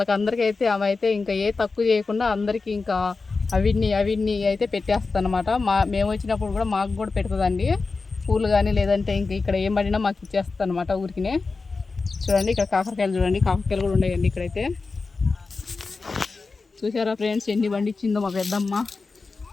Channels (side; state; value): right; quieter; 4.1 dB